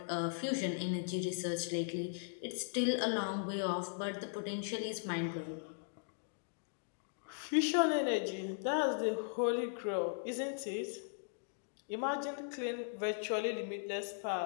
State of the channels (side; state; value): right; silent; digital silence